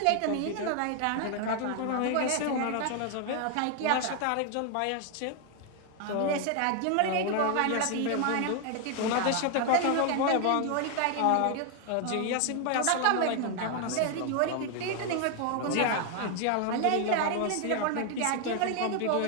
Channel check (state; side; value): different; both; correlation 0.00